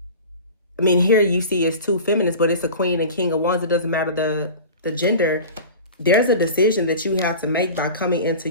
I mean, here you see it's two feminists, but it's a Queen and King of Wands. It doesn't matter the gender. There's a decision that you have to make by coming into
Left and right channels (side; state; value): both; inverted; correlation -0.36